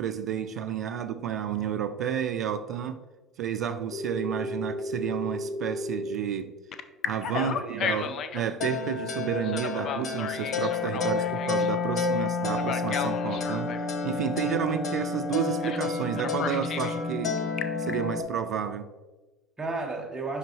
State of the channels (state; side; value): normal; both; correlation 0.30